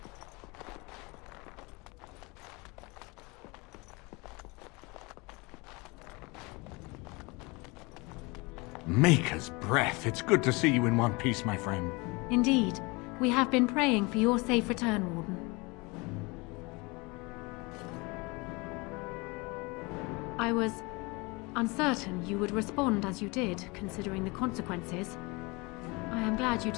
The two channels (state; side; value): quieter; right; 26.4 dB